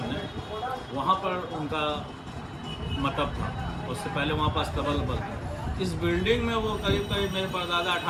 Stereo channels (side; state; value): both; identical; correlation 1.00